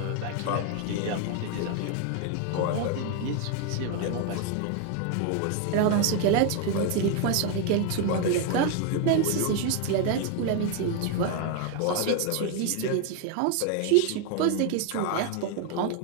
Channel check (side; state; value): both; different; correlation 0.01